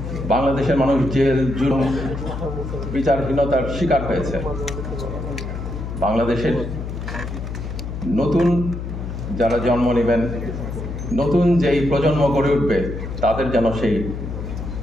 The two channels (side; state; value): left; noise; hum, 6 dB below the sound